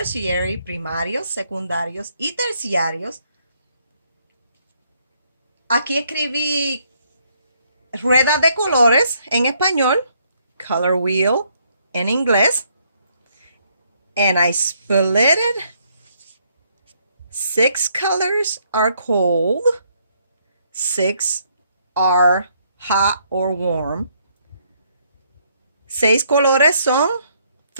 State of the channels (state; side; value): inverted; both; correlation -0.71